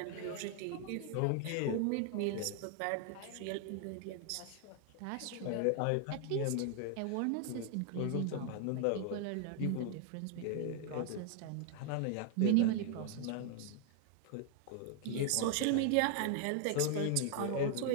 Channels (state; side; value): different; both; correlation 0.00